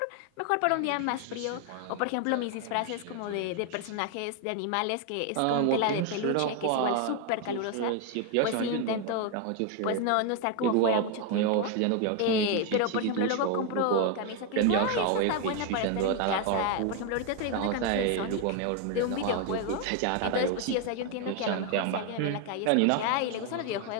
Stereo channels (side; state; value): both; different; correlation 0.01